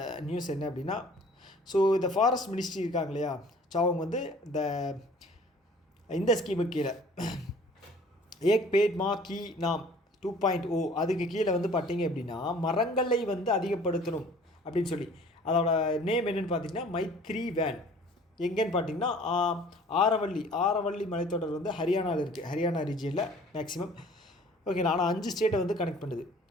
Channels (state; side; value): normal; both; correlation 0.51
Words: நியூஸ் என்ன அப்படின்னா, ஸோ இந்த ஃபாரஸ்ட் மினிஸ்ட்ரி இருக்காங்க இல்லையா, ஸோ அவங்க வந்து இந்த ஸ்கீமுக்கு கீழே ஏக் பேட் மா கி நாம் 2.0 அதுக்கு கீழே வந்து பார்த்தீங்க அப்படின்னா, மரங்களை வந்து அதிகப்படுத்தணும் அப்படின்னு சொல்லி, அதோட நேம் என்னென்னு பார்த்தீங்கன்னா மைத்ரி வேன். எங்கேன்னு பார்த்தீங்கன்னா ஆரவள்ளி மலைத்தொடர் வந்து ஹரியானாவில் இருக்குது, ஹரியானா ரீஜியனில் மேக்ஸிமம். ஓகே, ஆனால் 5 ஸ்டேட்டை வந்து கனெக்ட் பண்ணுது.